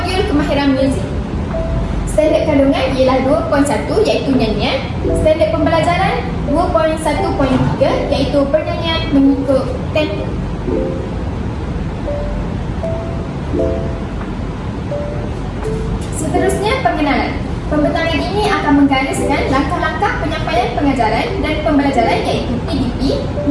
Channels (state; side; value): identical; both; correlation 1.00